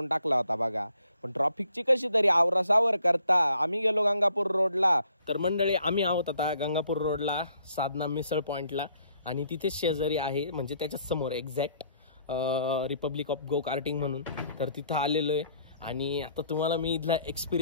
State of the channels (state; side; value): inverted; both; correlation -0.65